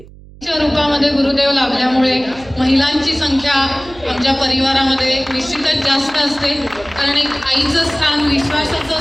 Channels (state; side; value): noise; right; hum, 21 dB below the sound